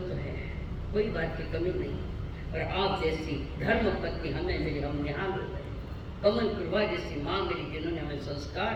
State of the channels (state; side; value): identical; both; correlation 1.00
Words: तो है, कोई बात की कमी नहीं, और आप जैसी धर्म पत्नी हमें मिली, हम यहाँ हो गए। कमल प्रभा जैसी माँ मिली जिन्होंने हमें संस्कार